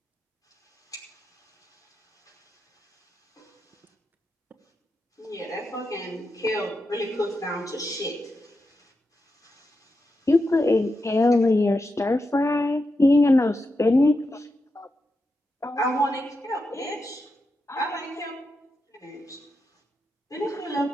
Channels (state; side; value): normal; both; correlation 0.87